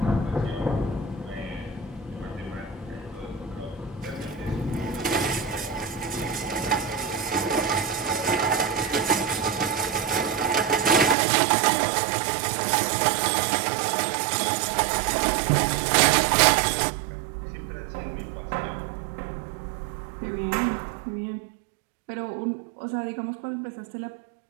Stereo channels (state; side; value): drops out; left; at 11.2 s